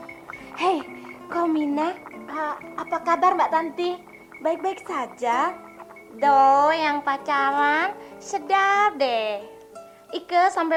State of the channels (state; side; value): identical; both; correlation 1.00